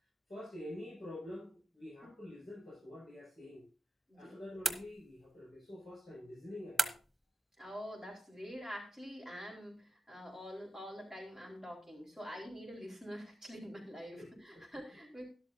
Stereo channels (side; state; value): both; normal; correlation 0.90